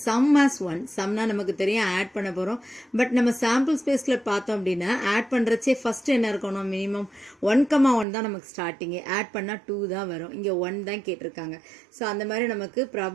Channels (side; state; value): left; drops out; at 8.1 s